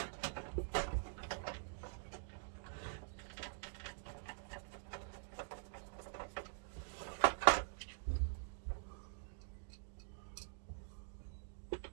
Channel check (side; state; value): left; silent; digital silence